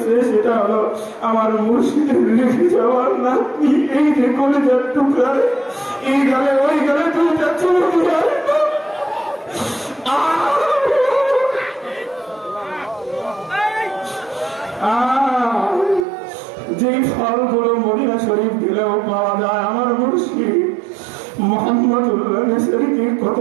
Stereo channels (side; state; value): left; drops out; at 16.1 s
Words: সেটা হলো আমার মুর্শিদের রেখে যাওয়ার নাতনি, এই যে কলেজের টুকরা, এই গালে ওই গালে দুইটা চুল দিয়ে যে ফলগুলো মদিনা শরীফ দিলেও পাওয়া যায়, আমার মুর্শিদ মোহাম্মদুল্লাহ নেসেরকে কত